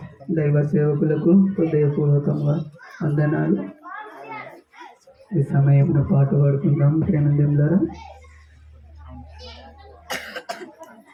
దైవ సేవకులకు హృదయపూర్వకంగా వందనాలు. ఈ సమయంలో పాట పాడుకుందాం ప్రేమందం ద్వారా.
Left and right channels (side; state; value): both; identical; correlation 1.00